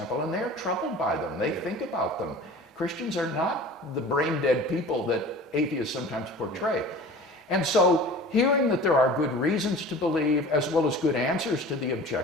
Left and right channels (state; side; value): normal; both; correlation 0.41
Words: and they're troubled by them. They think about them. Christians are not the brain-dead people that atheists sometimes portray. And so hearing that there are good reasons to believe, as well as good answers to the